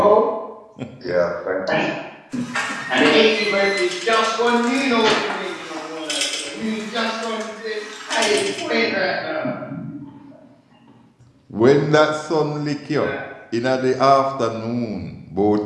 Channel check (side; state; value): both; identical; correlation 1.00